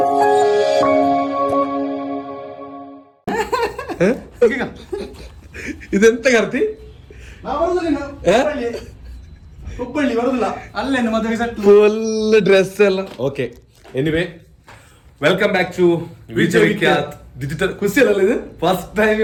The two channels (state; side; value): identical; both; correlation 1.00